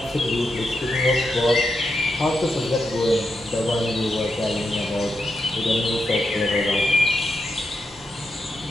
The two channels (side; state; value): both; normal; correlation 0.85